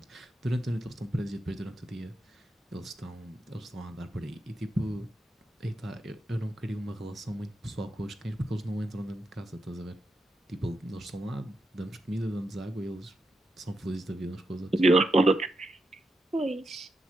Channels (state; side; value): normal; both; correlation 0.85